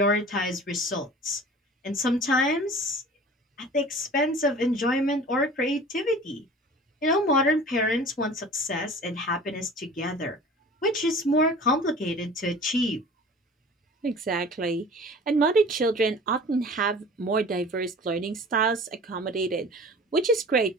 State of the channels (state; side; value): normal; both; correlation 0.42